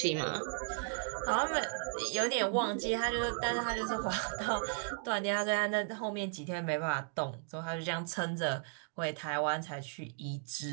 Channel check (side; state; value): left; silent; 54 dB below the other